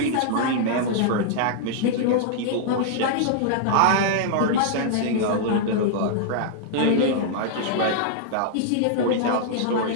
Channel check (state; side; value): different; both; correlation -0.01